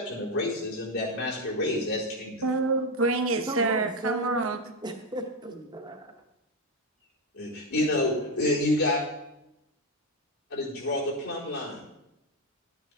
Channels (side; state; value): both; normal; correlation 0.08